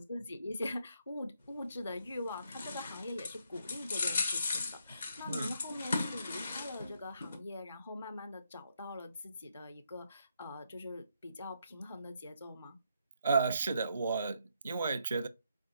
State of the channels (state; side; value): inverted; both; correlation -0.75